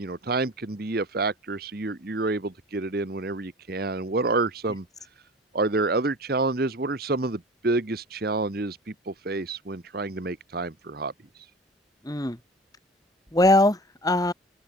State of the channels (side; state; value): both; normal; correlation 0.36